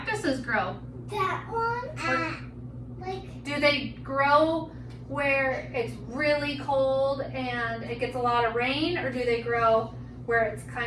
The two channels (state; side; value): identical; both; correlation 1.00